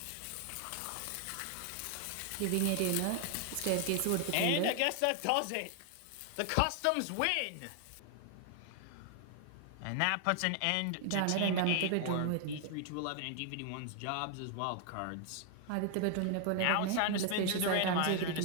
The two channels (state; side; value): different; both; correlation 0.00